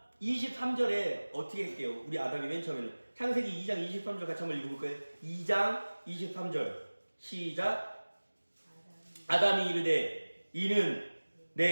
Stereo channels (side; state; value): both; inverted; correlation -1.00